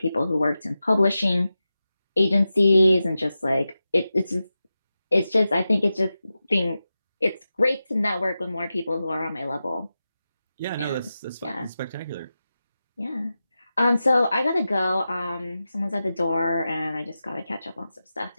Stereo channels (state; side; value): inverted; both; correlation -0.92